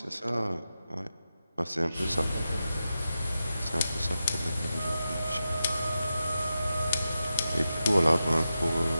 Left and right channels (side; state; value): both; inverted; correlation -0.90